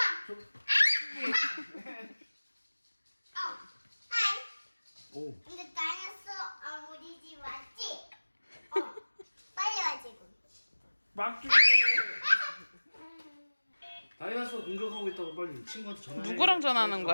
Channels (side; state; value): both; inverted; correlation -1.00